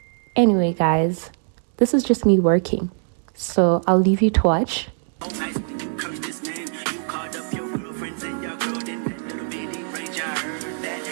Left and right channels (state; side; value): silent; left; digital silence